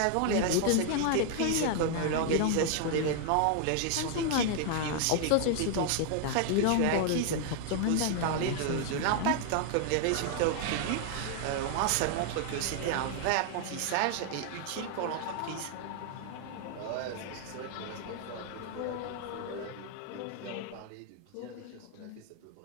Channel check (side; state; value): both; different; correlation 0.00